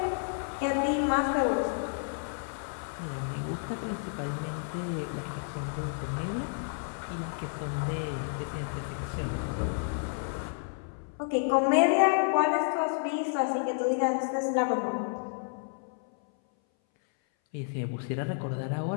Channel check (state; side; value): silent; right; 57 dB below the other